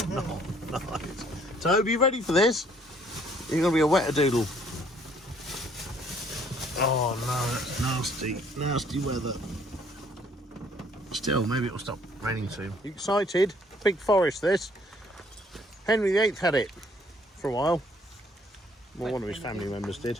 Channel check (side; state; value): both; normal; correlation 0.62